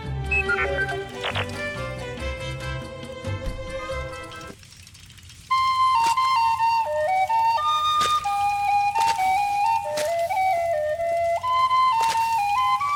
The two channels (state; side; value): identical; both; correlation 1.00